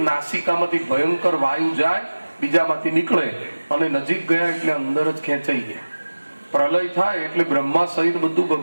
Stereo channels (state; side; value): inverted; both; correlation -1.00